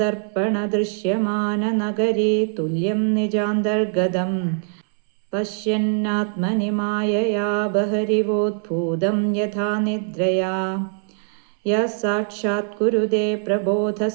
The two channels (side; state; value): left; silent; 61 dB below the other